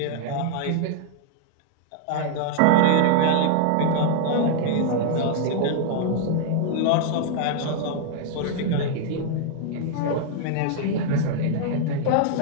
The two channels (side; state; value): both; different; correlation -0.01